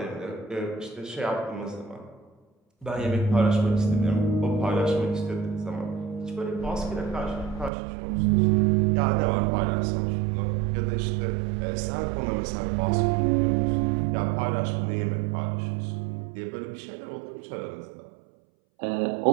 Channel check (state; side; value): drops out; left; at 7.7 s